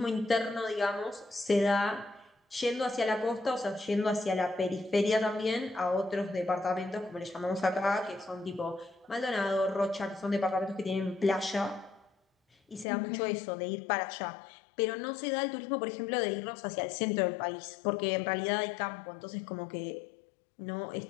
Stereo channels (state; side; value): drops out; right; at 12.9 s